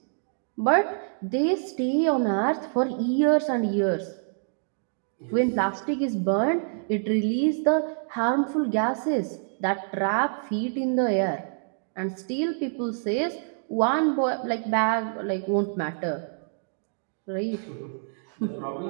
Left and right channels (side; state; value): left; silent; digital silence